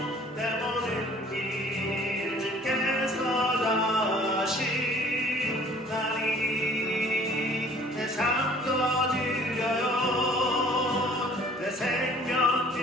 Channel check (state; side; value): normal; both; correlation 0.53